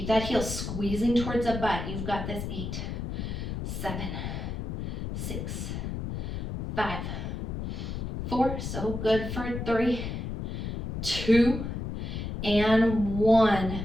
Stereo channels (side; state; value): left; noise; rumble, 4 dB below the sound